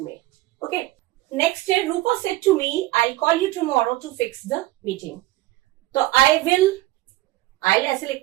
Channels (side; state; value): left; quieter; 18.1 dB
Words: में। ओके, नेक्स्ट है, Rupa said to me, I call you tomorrow to fix the meeting. तो आई विल ऐसे